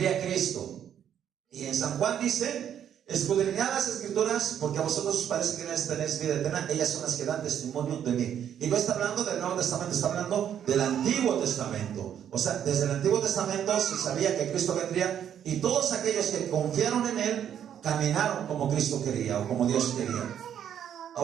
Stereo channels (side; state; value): left; quieter; 9.5 dB